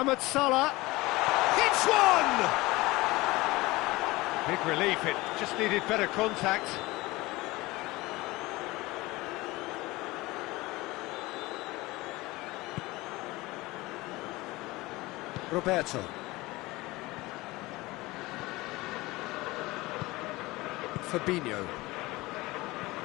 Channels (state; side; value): quieter; right; 20.8 dB